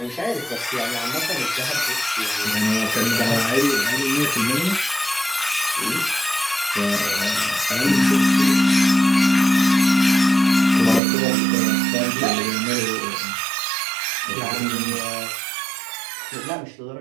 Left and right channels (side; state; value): left; drops out; at 11.0 s